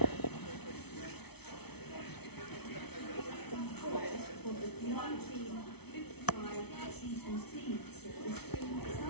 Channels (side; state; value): right; late; 0.98 ms